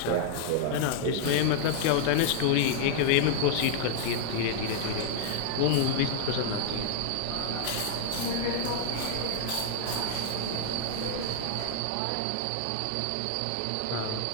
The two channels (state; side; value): different; both; correlation 0.00